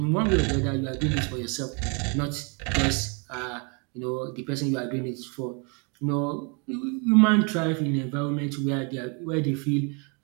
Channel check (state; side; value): quieter; left; 34.5 dB